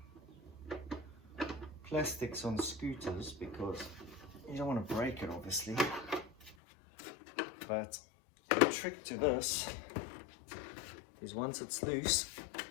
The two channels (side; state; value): right; drops out; at 6.6 s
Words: plastics on scooters because you don't want to break it, obviously. But the trick to this is once it's loose,